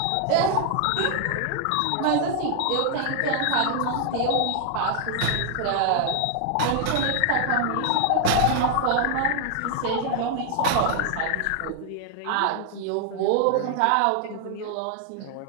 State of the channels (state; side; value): different; both; correlation 0.00